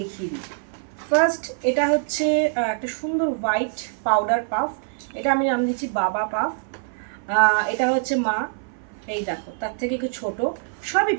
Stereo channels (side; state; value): left; silent; 57 dB below the other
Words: দিই। ফার্স্ট এটা হচ্ছে একটা সুন্দর হোয়াইট পাউডার পাফ, এটা আমি নাম দিচ্ছি বাবা পাফ। এটা হচ্ছে মা, এই দেখো তার থেকে একটু ছোটো, সবই